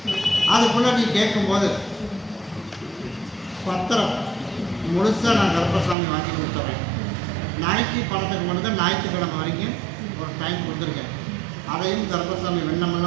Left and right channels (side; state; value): left; drops out; at 6.0 s